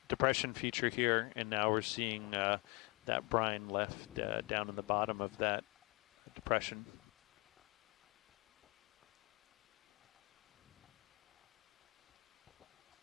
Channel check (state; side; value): quieter; right; 29.1 dB